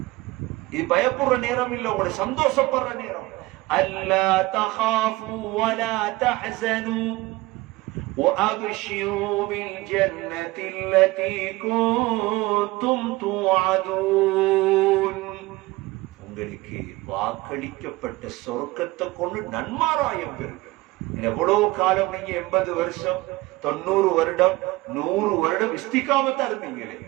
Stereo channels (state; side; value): quieter; left; 20.5 dB